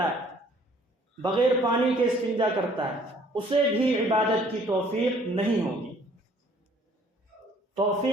ہے، بغیر پانی کے استنجا کرتا ہے، اسے بھی عبادت کی توفیق نہیں ہوگی.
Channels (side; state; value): both; normal; correlation 0.58